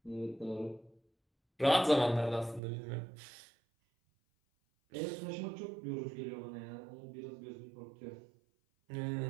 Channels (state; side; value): drops out; left; at 2.6 s